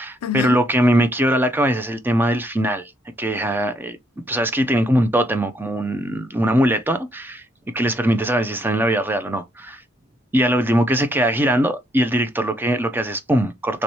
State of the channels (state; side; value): normal; both; correlation 0.72